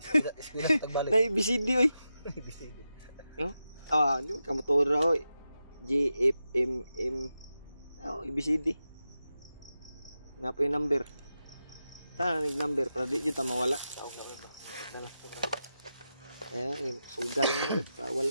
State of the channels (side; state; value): both; inverted; correlation -0.90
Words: Eskwela sa Tagbalik. Na ABCD oy. ABCD. Yo. Ah, di ka motora oy. G F M M. Oh, ABCD. Na po yung number. Ta nig number para di jud ta mawala. Sao nga ba? Dala to bro. Eh, sugal na pa